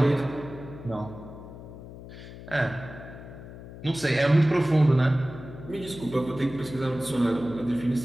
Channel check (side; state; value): left; noise; hum, 14 dB below the sound